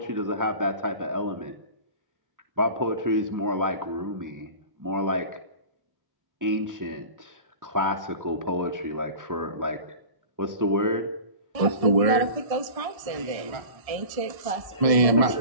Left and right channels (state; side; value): late; left; 1.6 ms